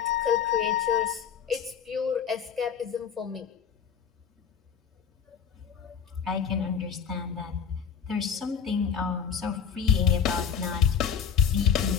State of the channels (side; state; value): right; quieter; 7.4 dB